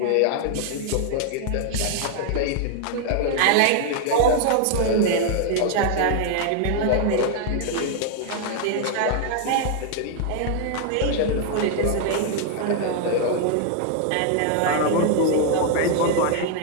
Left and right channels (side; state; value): both; different; correlation 0.00